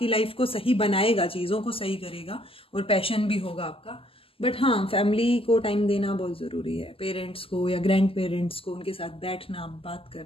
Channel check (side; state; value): right; late; 0.26 ms